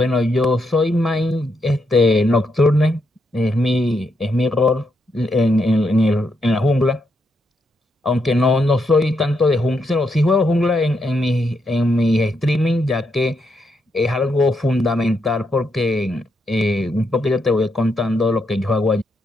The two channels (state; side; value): normal; both; correlation 0.80